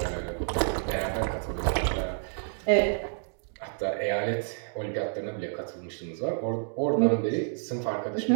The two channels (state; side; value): silent; left; digital silence